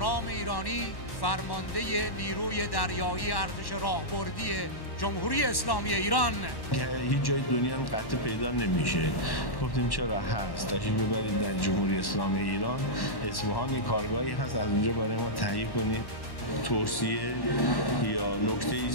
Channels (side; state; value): right; late; 1.1 ms